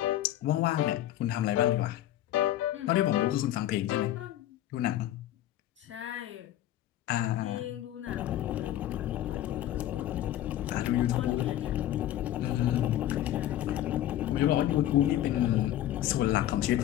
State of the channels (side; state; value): right; quieter; 12.9 dB